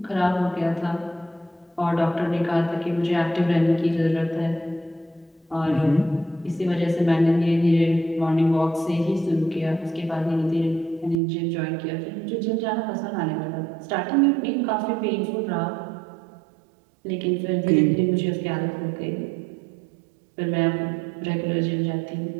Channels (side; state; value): left; drops out; at 11.2 s